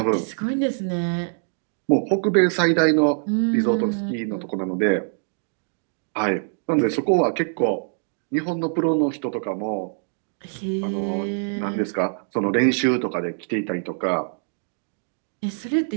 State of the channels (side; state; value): left; silent; digital silence